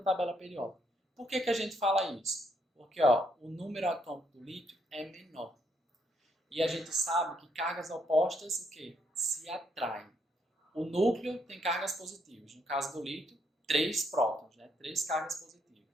tabela periódica. Por que a gente fala isso? Porque ó, o número atômico do lítio é menor. E a gente sabe que cargas opostas o quê? Se atraem. O núcleo tem cargas positivas. No caso do lítio, 3 prótons, né? 3 cargas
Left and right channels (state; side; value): normal; both; correlation 0.74